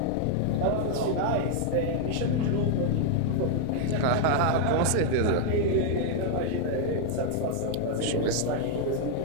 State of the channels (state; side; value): different; both; correlation 0.00